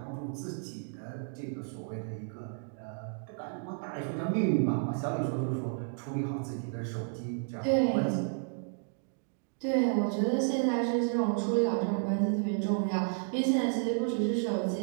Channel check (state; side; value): silent; left; 56 dB below the other